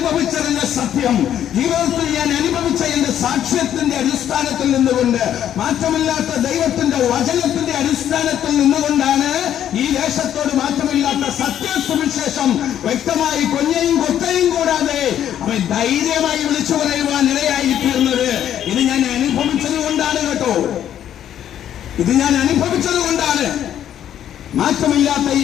സത്യം, ജീവിതത്തിൽ ഞാൻ അനുഭവിച്ച എന്റെ സാക്ഷ്യത്തിന്റെ അടിസ്ഥാനത്തിൽ നിന്നുകൊണ്ട്, മാറ്റമില്ലാത്ത ദൈവത്തിന്റെ വചനത്തിന്റെ അടിസ്ഥാനത്തിൽ നിന്നുകൊണ്ടാണ് ഈ ദേശത്തോട് മാറ്റമില്ലാത്ത സത്യസുവിശേഷം വ്യക്തമായി കൊഞ്ഞയും കൊത്തയും കൂടാതെ അവൻ ധൈര്യമായി വിളിച്ചു പറയുവാൻ ഇടയായി തീർന്നത്. ഇത് ഞാൻ അനുഭവിച്ചത് കൊണ്ടാണ് കേട്ടോ, ഇത് ഞാൻ അനുഭവിച്ചത് കൊണ്ടാണ്. മാറ്റമില്ലാത്ത ഈ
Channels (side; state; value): right; quieter; 10.5 dB